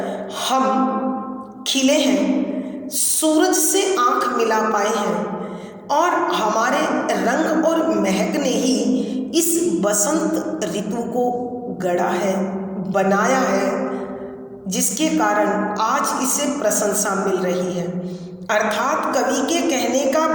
हम खिले हैं, सूरज से आंख मिला पाए हैं, और हमारे रंग और महक ने ही इस बसंत ऋतु को गढ़ा है, बनाया है, जिसके कारण आज इसे प्रशंसा मिल रही है। अर्थात कवि के कहने का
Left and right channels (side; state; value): both; identical; correlation 1.00